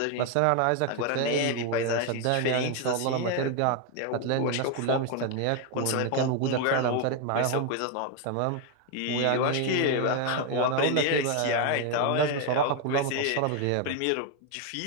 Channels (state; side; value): different; both; correlation 0.01